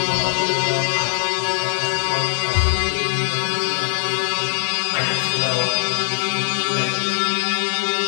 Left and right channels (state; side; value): silent; right; digital silence